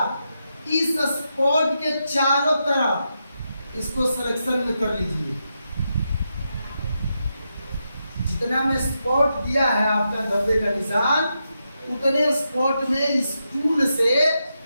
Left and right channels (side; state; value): both; inverted; correlation -0.85